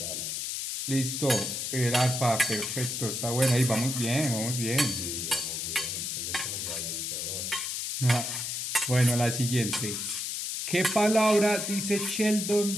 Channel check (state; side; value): noise; left; hiss, 3 dB below the sound